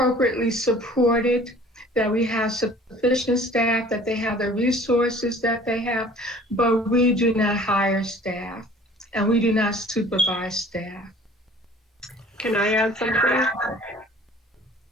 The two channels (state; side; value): normal; both; correlation 0.49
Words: supported, that we have sufficient staff, that they have the resources that they have, but we do not hire staff, and we do not supervise staff. Can I add something?